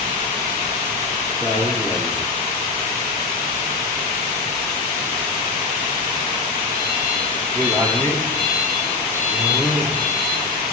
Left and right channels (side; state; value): right; quieter; 4.1 dB